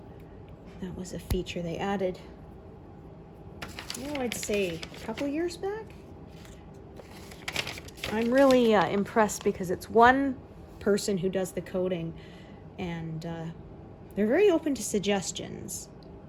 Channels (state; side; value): identical; both; correlation 1.00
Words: That was a feature they added, I'd say a couple years back. I'm really impressed because it's one person who does the coding, and they're very open to suggestions